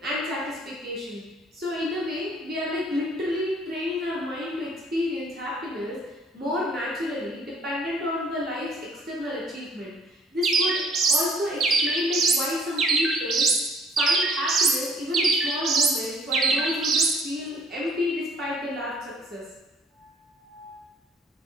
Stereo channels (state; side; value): normal; both; correlation 0.58